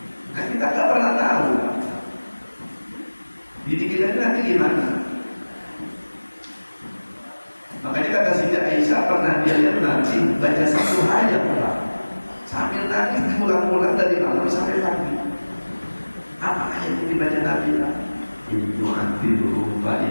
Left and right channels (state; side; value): inverted; both; correlation -1.00